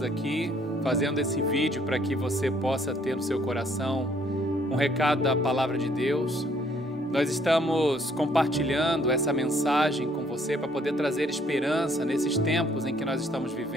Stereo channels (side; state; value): both; normal; correlation 0.64